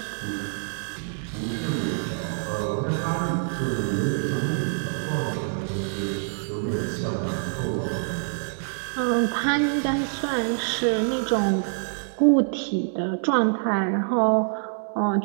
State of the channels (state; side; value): silent; left; digital silence